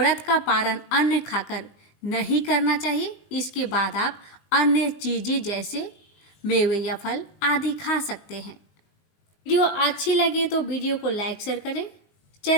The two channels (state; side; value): late; right; 19 ms